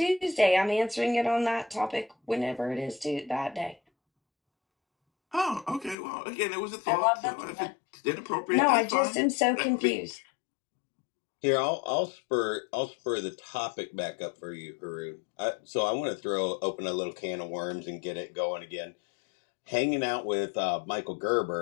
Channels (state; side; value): drops out; right; at 6.0 s